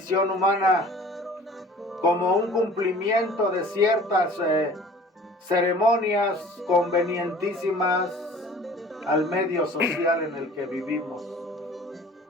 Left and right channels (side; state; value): both; normal; correlation 0.47